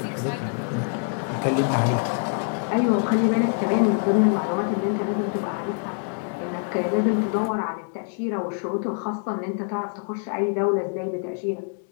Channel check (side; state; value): right; silent; 58 dB below the other